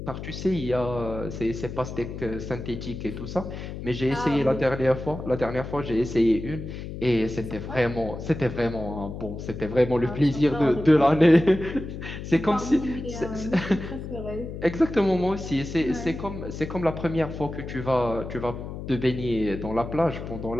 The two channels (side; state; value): left; noise; hum, 8 dB below the sound